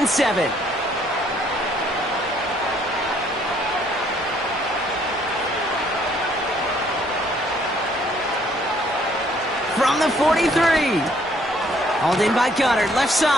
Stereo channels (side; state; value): both; normal; correlation 0.64